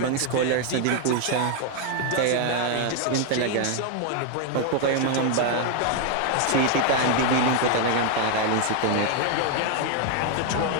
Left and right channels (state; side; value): different; both; correlation 0.00